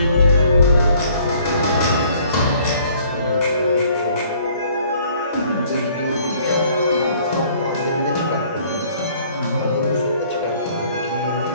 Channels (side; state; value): both; inverted; correlation -0.58